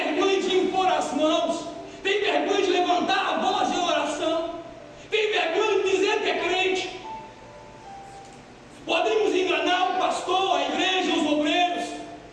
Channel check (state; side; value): identical; both; correlation 1.00